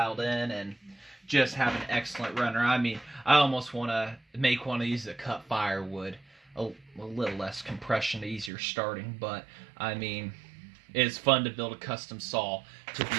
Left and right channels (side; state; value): left; drops out; at 8.5 s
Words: in, and just have an excellent runner. I mean, I almost want to make one of these that cut firewood. A little less compression, easier starting, but I mean, it's fun to build a custom saw to